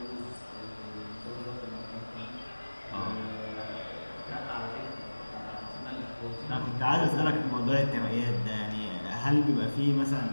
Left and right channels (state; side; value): inverted; both; correlation -1.00